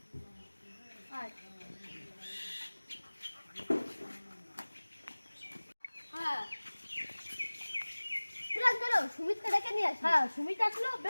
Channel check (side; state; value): both; inverted; correlation -1.00